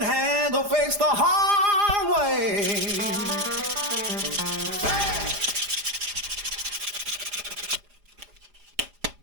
handle fix the hard way.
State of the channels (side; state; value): left; late; 4.9 ms